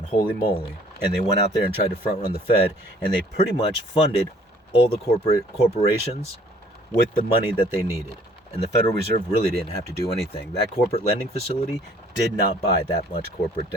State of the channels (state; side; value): normal; both; correlation 0.57